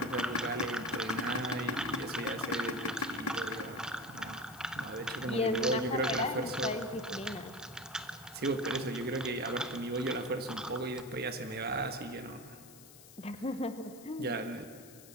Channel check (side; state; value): left; noise; hiss, 19 dB below the sound